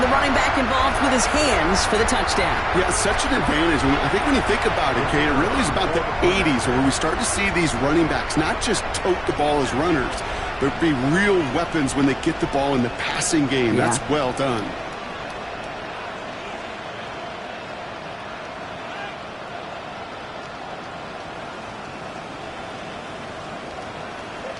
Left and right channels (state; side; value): identical; both; correlation 1.00